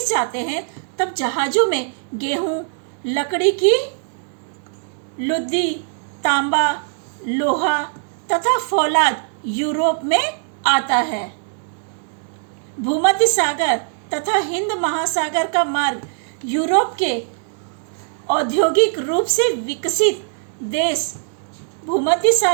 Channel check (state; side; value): silent; left; digital silence